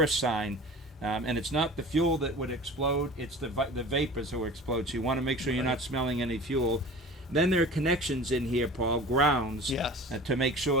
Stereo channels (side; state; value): both; normal; correlation 0.38